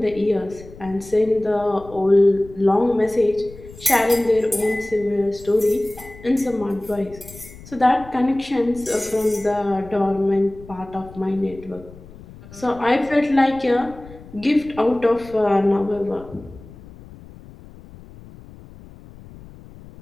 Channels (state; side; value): noise; left; rumble, 19 dB below the sound